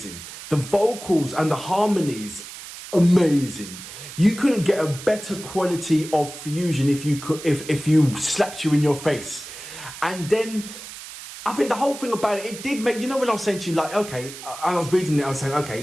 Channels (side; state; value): right; noise; hiss, 13 dB below the sound